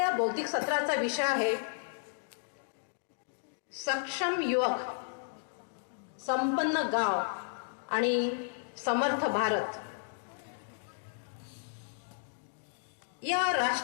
बौद्धिक सत्राचा विषय आहे सक्षम युवक, संपन्न गाव आणि समर्थ भारत. या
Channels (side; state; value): right; silent; digital silence